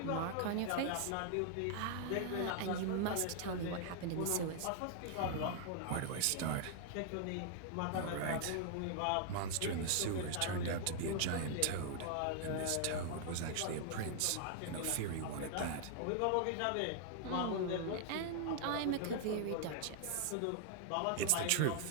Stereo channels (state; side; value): different; both; correlation -0.01